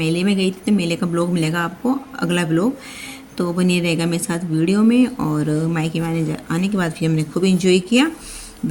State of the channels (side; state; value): both; identical; correlation 1.00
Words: में गई थी तो मेले का ब्लॉग मिलेगा आपको अगला ब्लॉग, तो बने रहेगा मेरे साथ वीडियो में। और मायके में आने के बाद फिर हमने खूब इंजॉय किया,